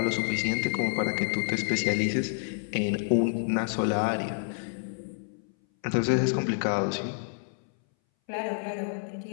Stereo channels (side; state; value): right; silent; 59 dB below the other